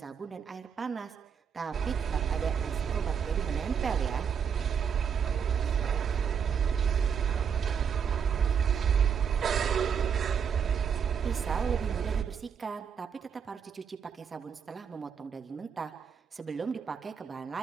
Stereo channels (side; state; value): left; quieter; 7.2 dB